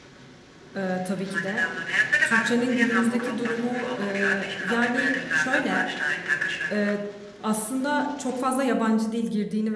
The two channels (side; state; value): both; identical; correlation 1.00